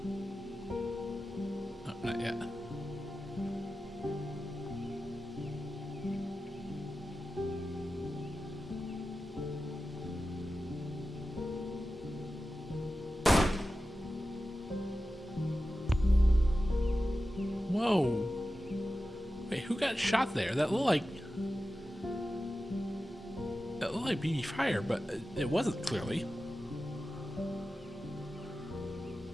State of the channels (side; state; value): both; normal; correlation 0.93